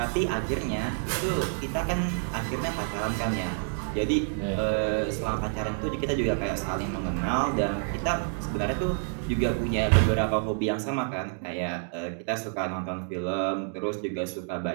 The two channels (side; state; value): left; silent; 59 dB below the other